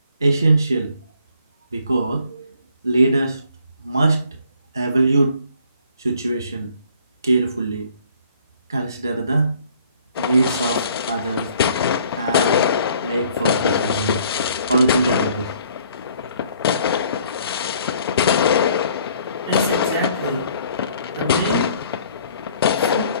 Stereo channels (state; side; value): inverted; both; correlation -0.60